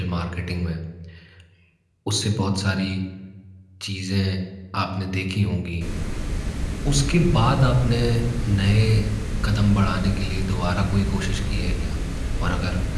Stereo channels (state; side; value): identical; both; correlation 1.00